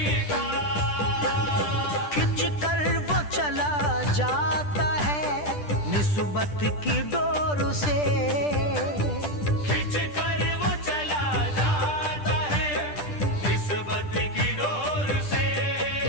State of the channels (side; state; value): right; late; 10 ms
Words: का। खिंच कर वो चला जाता है निस्बत की डोर से। खिंच कर वो चला जाता है निस्बत की डोर से।